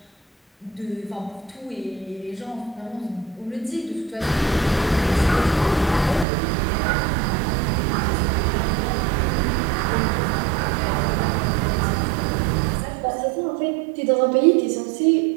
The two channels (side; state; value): left; drops out; at 6.2 s